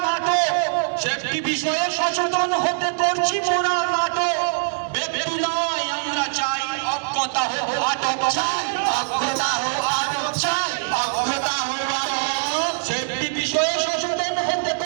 নাটক, সেফটি বিষয়ে সচেতন হতে করছি মোরা নাটক। ব্যক্তি নয় আমরা চাই অজ্ঞতা হোক আটক।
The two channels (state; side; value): silent; left; digital silence